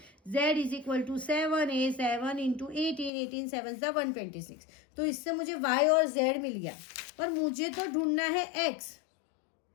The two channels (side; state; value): right; drops out; at 3.1 s